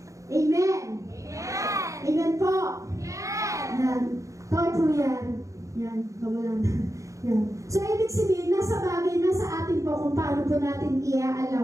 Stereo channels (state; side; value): late; left; 0.15 ms